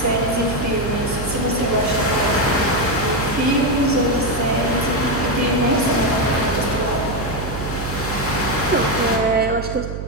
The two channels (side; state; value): right; noise; hum, 7 dB below the sound